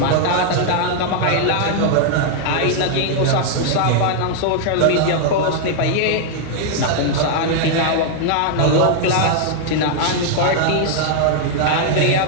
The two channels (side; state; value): both; different; correlation 0.00